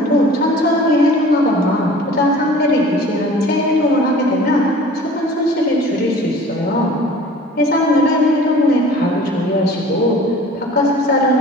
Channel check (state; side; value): normal; both; correlation 0.45